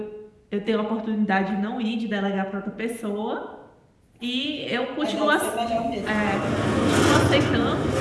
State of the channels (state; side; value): identical; both; correlation 1.00